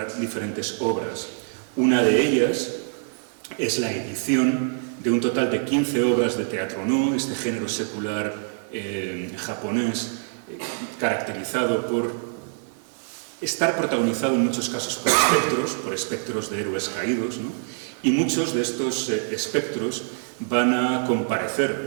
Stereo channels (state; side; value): silent; left; digital silence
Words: diferentes obras. Una de ellas es la edición de un total de 15 obras de teatro no, este género secular japonés, caracterizado por estar protagonizado en muchos casos por espectros de héroes caídos, ¿no? Y muchos de estos espectros van a